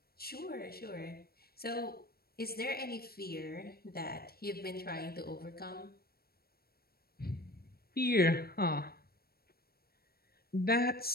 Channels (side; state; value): right; late; 0.44 ms